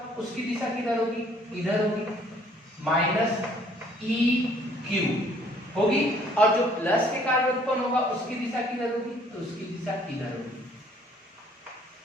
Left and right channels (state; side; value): normal; both; correlation 0.60